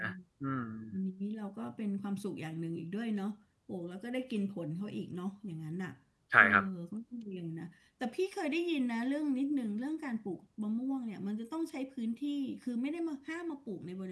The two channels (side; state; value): both; identical; correlation 1.00